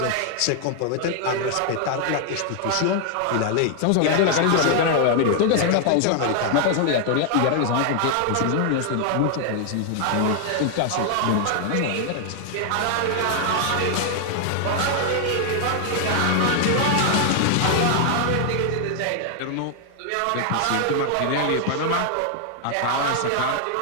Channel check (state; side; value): different; both; correlation 0.00